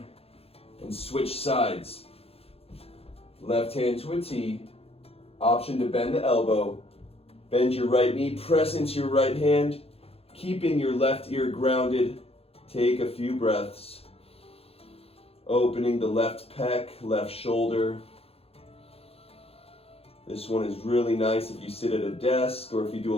and switch sides. Left hand to a T. Option to bend the elbow. Bend your right knee, press into your right hand, keeping your left ear grounded. Take a few breaths. Opening the left pec, left shoulder. This one is really nice if you sit at a desk or if you do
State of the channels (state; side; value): late; right; 0.29 ms